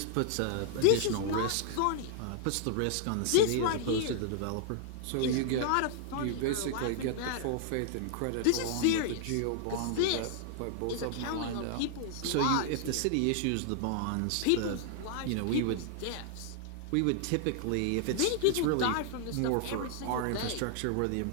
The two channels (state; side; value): different; both; correlation -0.01